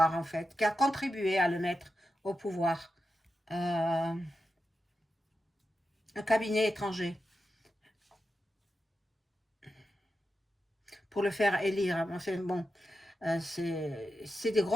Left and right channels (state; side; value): normal; both; correlation 0.89